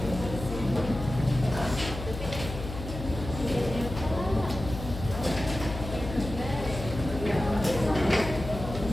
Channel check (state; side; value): noise; left; hum, 8 dB below the sound